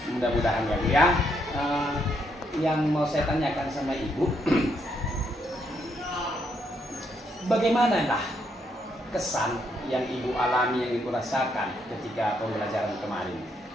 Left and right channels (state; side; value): normal; both; correlation 0.75